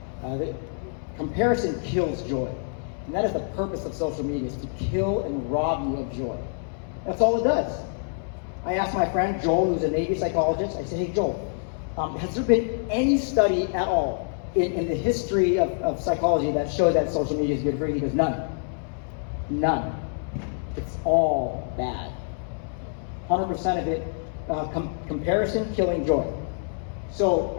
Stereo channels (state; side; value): silent; right; 61 dB below the other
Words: Comparison kills joy. And that is the purpose of social media, is to kill and rob you of joy. That's all it does. I asked my friend Joel, who's a Navy psychologist, I said, hey Joel, has there been any study at all in the history of psychology that shows that social media is good for you? He goes, none. None. It's all bad. 100% of it, comparison killing joy. So,